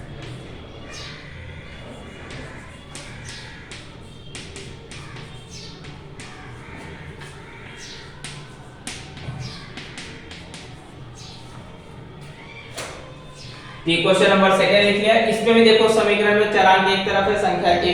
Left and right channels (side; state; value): both; identical; correlation 1.00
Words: ये क्वेश्चन नंबर 2 लिख लिया। इसमें भी देखो समीकरण में चरांक एक तरफ है, संख्या